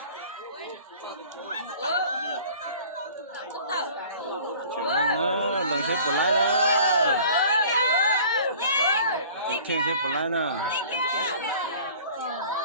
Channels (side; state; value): both; inverted; correlation -0.47